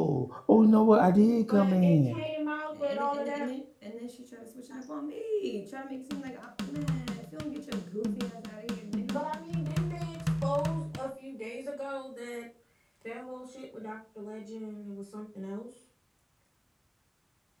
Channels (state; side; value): identical; both; correlation 1.00